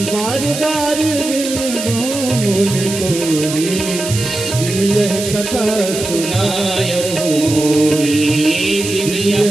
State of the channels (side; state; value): right; noise; hiss, 7 dB below the sound